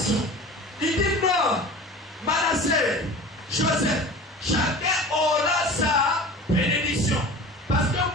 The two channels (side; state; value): both; normal; correlation 0.38